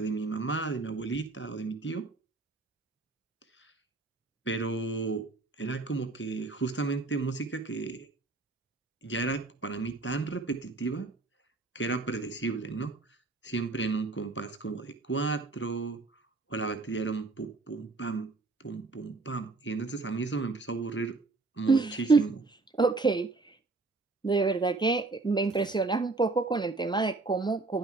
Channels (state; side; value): quieter; left; 3.5 dB